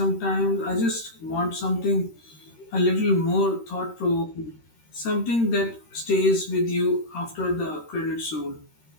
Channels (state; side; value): late; right; 13 ms